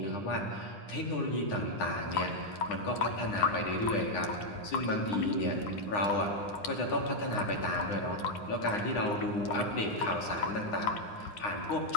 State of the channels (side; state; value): right; late; 9.8 ms